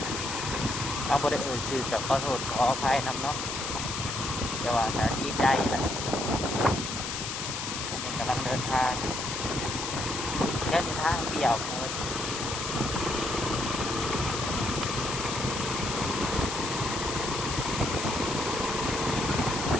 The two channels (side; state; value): left; noise; hiss, 4 dB below the sound